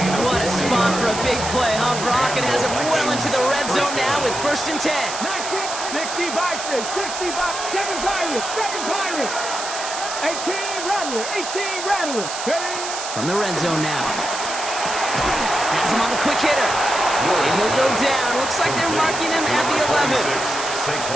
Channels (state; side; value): noise; right; hiss, 7 dB below the sound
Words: What a spot for a big play, huh, Brock? It has him well into the red zone now with 1st and 10. 60 Vikings, 60 7 Pirates, 7 Pirates. 18 Rattlers, 18 Rattlers. From the red zone now. Has him on the quick hitter. And he'll go down. Looks like they're marking him at the 11.